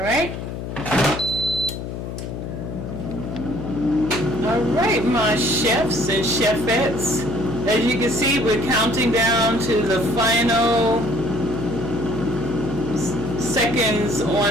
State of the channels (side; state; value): left; noise; hum, 7 dB below the sound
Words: Alright, my chefs and chefettes. As you can see, we're counting down to the final seconds